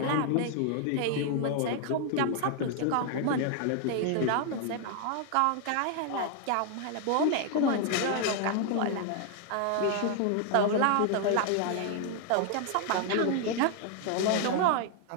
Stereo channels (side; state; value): both; different; correlation 0.00